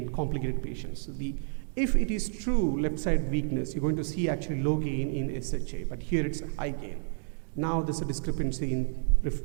complicated patients. So if it is true left side weakness, you're going to see actually low gain in SHA, but here it's a high gain. Now there's a discrepancy in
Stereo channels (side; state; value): left; silent; digital silence